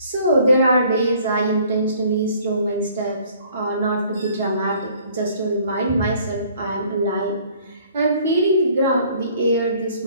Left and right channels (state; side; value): inverted; both; correlation -0.57